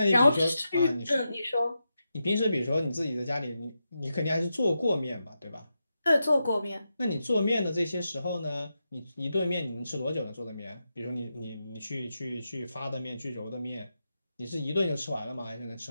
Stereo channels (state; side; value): inverted; both; correlation -0.88